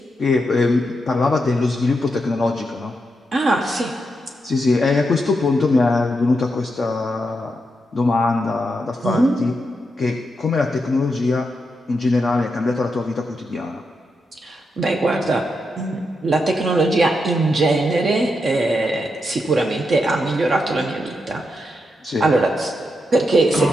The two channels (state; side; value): normal; both; correlation 0.84